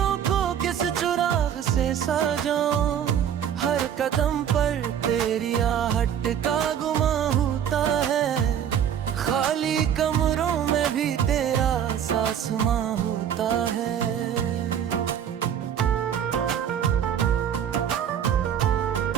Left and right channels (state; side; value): quieter; left; 9.1 dB